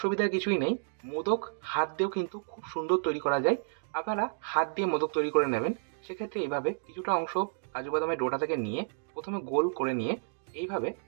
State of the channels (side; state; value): left; silent; digital silence